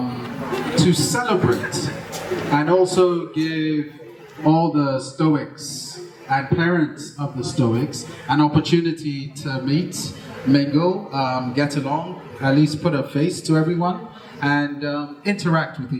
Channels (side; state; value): both; identical; correlation 1.00